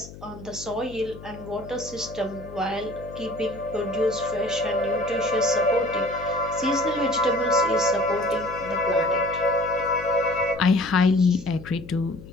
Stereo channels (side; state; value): left; noise; hum, 16 dB below the sound